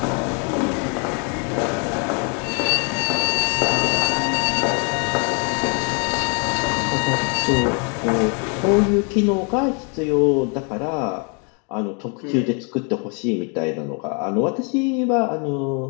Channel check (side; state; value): right; quieter; 36.8 dB